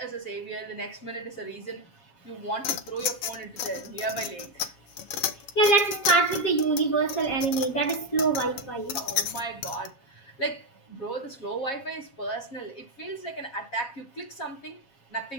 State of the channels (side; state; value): right; late; 7.3 ms